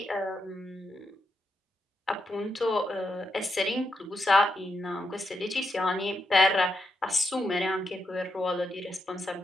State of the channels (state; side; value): normal; both; correlation 0.83